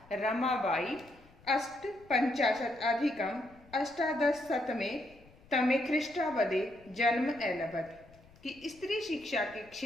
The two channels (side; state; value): left; noise; rumble, 26 dB below the sound